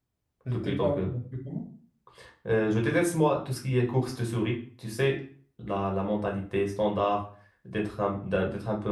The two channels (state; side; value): identical; both; correlation 1.00